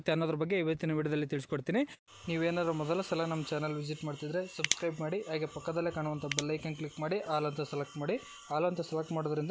ಅನ್ನೋದ್ರ ಬಗ್ಗೆ ಇವತ್ತಿನ ವಿಡಿಯೋದಲ್ಲಿ ತಿಳಿಸ್ಕೊಡ್ತೀನಿ. ನೀವೇನಾದ್ರು ಮೊದಲ ಸಲ ನಮ್ಮ ಚಾನಲ್ ವಿಸಿಟ್ ಮಾಡ್ತಿದ್ರೆ ಸಬ್ಸ್ಕ್ರೈಬ್ ಮಾಡಿ, ಹಾಗೆ ಪಕ್ಕದಲ್ಲೇ ಕಾಣುವಂಥ ಬೆಲ್ ಐಕನ್ ಕ್ಲಿಕ್ ಮಾಡಿ ಆಲ್ ಅಂತ ಸೆಲೆಕ್ಟ್ ಮಾಡಿ. ಆಲ್ ಅಂತ ಸೆಲೆಕ್ಟ್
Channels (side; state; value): both; identical; correlation 1.00